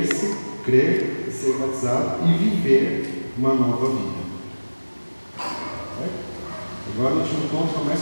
crer, ser batizado e viver uma nova vida. Certo? Agora o último ponto é mais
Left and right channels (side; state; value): both; inverted; correlation -1.00